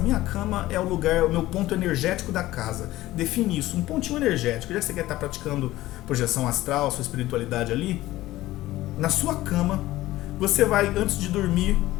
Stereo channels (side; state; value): right; quieter; 16.4 dB